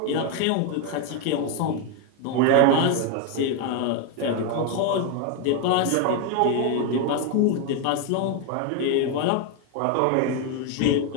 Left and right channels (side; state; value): both; different; correlation 0.01